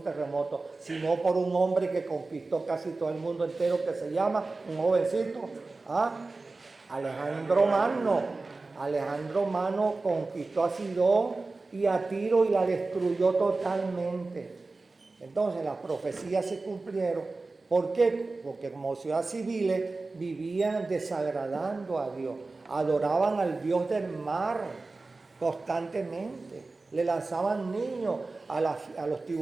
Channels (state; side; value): quieter; left; 3.5 dB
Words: terremoto, sino por un hombre que conquistó casi todo el mundo entero, que se llama, un jovencito, Alejandro Magno. Alejandro Magno conquistó a Sidón y a Tiro y la destruyó totalmente. Entonces las profecías se cumplieron. ¿Por qué? Porque como ciudades civiles vivían desagradando a Dios, adoraban al Dios del mar constantemente, le lanzaban niños a los